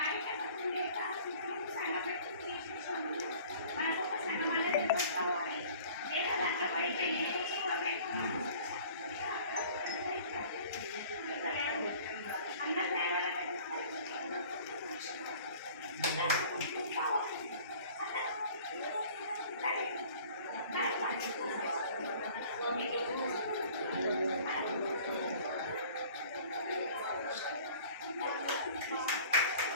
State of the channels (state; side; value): inverted; both; correlation -0.49